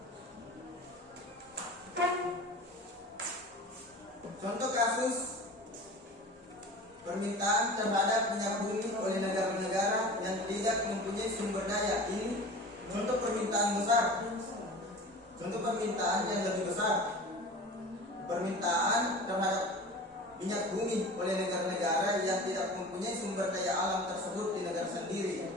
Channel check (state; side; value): normal; both; correlation 0.37